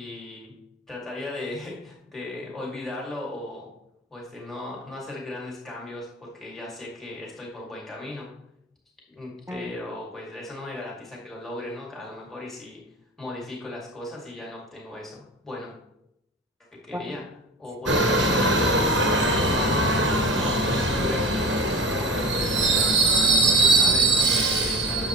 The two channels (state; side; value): normal; both; correlation 0.35